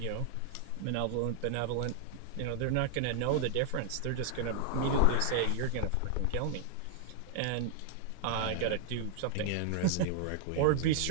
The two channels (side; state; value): both; different; correlation 0.00